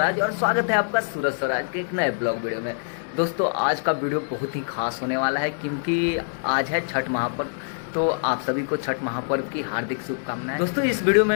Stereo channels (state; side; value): silent; right; 62 dB below the other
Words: और स्वागत है आपका सूरज स्वराज के एक नए ब्लॉग वीडियो में। दोस्तों आज का वीडियो बहुत ही खास होने वाला है क्योंकि आज है छठ महापर्व। तो आप सभी को छठ महापर्व की हार्दिक शुभकामनाएं। दोस्तों इस वीडियो में